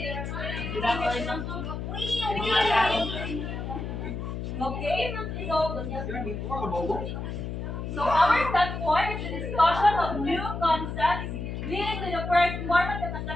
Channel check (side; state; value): left; noise; hum, 5 dB below the sound